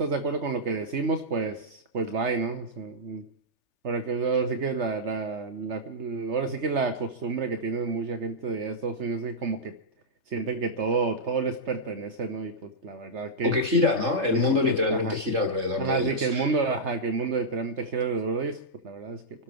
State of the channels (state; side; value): late; left; 3.3 ms